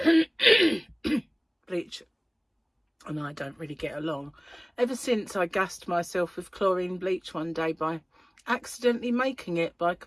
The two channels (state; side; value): identical; both; correlation 1.00